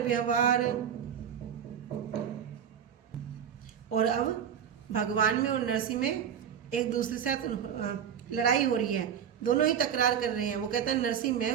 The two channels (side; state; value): left; quieter; 8.6 dB